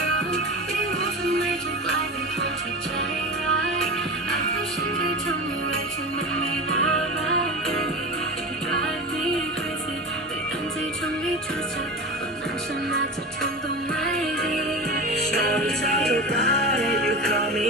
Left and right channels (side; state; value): both; normal; correlation 0.27